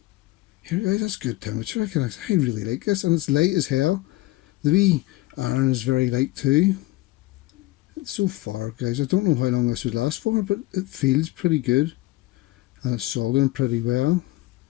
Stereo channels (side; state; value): right; quieter; 19.0 dB